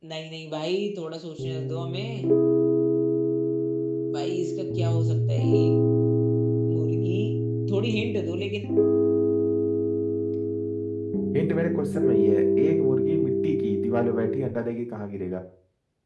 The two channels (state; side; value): identical; both; correlation 1.00